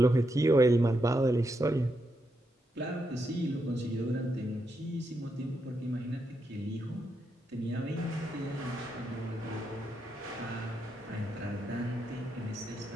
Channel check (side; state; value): both; normal; correlation 0.82